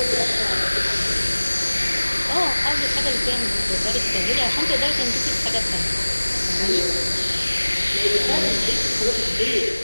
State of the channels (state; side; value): inverted; both; correlation -1.00